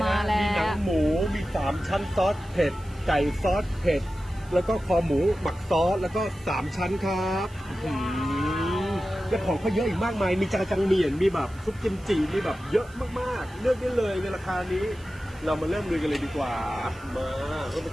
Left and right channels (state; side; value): noise; right; hiss, 26 dB below the sound